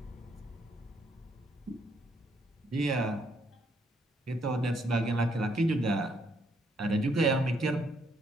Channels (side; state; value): both; normal; correlation 0.72